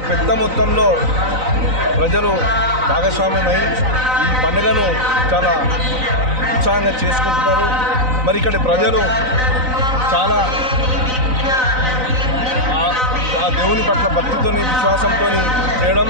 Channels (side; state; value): left; late; 3.9 ms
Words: పెద్ద మొత్తంలో ప్రజలు భాగస్వామ్యమై ఈ పండుగను చాలా ఉత్సాహంగా చేసుకుంటున్నారు. మరి ఇక్కడి ప్రజలు చాలా ఆ దేవుని పట్ల భక్తితోని విశ్వాసంతో చేయడం,